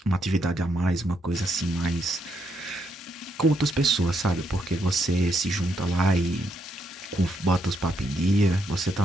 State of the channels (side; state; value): both; normal; correlation 0.77